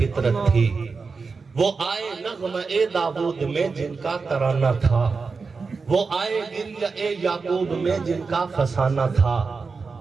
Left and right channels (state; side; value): quieter; left; 4.6 dB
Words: تھی، وہ آئے نغمہ داود میں جن کا ترانہ تھا، وہ آئے گریہ یعقوب میں جن کا فسانہ تھا،